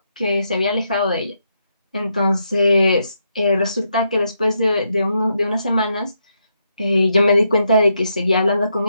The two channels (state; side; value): inverted; both; correlation -0.80